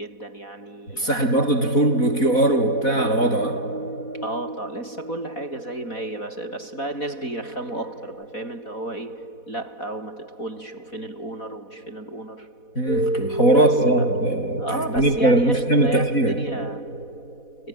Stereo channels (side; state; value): right; late; 4.1 ms